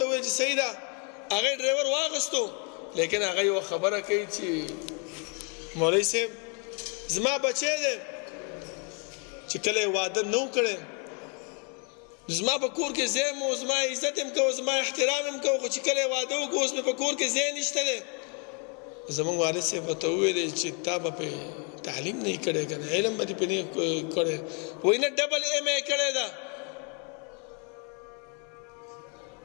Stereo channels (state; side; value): quieter; right; 36.8 dB